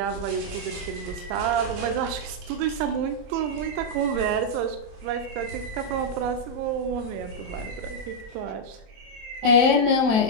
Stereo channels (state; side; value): late; left; 23 ms